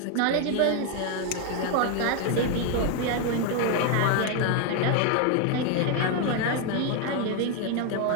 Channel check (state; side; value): different; both; correlation 0.01